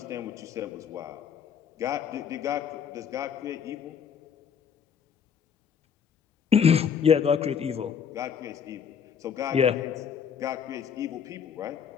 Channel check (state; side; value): quieter; right; 7.3 dB